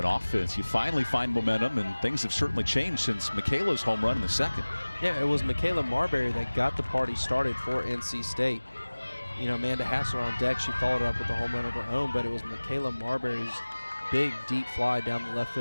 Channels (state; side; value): inverted; both; correlation -1.00